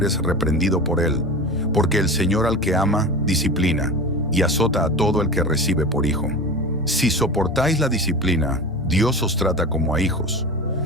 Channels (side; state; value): both; normal; correlation 0.30